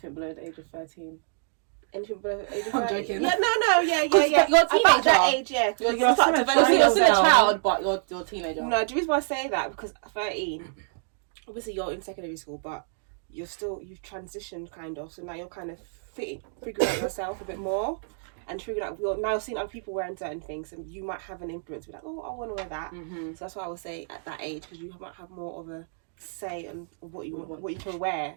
below the age of 13. Anything below the age of I'm 30? joking. Yeah, no, yeah. You're a About that teenager. age, yeah. Because You're you start still a developing You're still a now. child, but you're a teenager. No, the reason why I say that because 13, obviously you're in secondary school, but you've transitioned kind of, so now you're kind of figuring out yourself a bit more and figuring out you're now seeing other people wearing certain things, and you might have an influence. Be like, oh, I want to wear that. Mm-hmm. So that's why I would say at that age, because you might have more of a say on what you can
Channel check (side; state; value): left; silent; digital silence